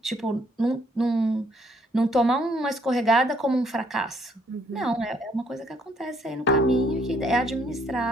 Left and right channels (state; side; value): normal; both; correlation 0.67